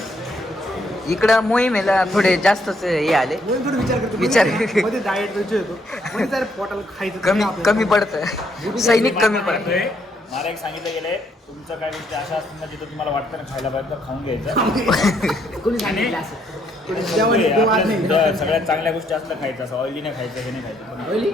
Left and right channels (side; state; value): both; normal; correlation 0.72